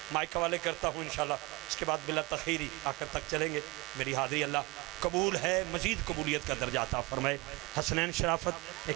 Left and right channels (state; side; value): quieter; left; 24.5 dB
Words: مائک حوالے کرتا ہوں انشاءاللہ اس کے بعد بلا تخیری آخر تک چلیں گے میری حاضری اللہ قبول ہے مزید قبولیت کا درجہ عطا فرمائے حسنین شرافت